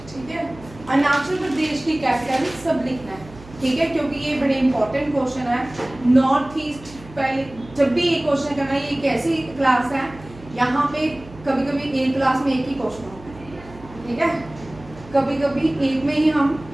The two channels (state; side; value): noise; right; hum, 19 dB below the sound